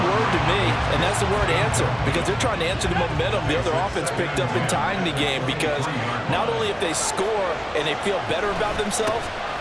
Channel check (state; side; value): identical; both; correlation 1.00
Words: word to me, and that's the word answer, because they're trying to answer the momentum the other offense picked up in tying the game, because not only if they score and they feel better about themselves,